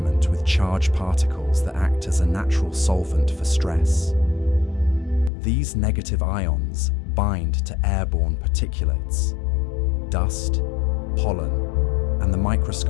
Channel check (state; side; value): drops out; right; at 5.3 s